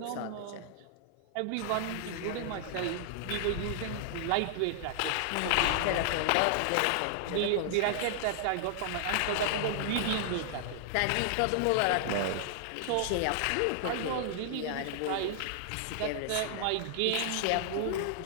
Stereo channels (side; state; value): both; different; correlation -0.01